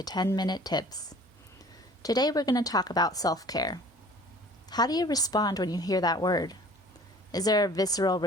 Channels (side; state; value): both; normal; correlation 0.48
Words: 10-Minute Tips. Today we're going to talk about self-care. How do you respond when you hear that word? Is there a visceral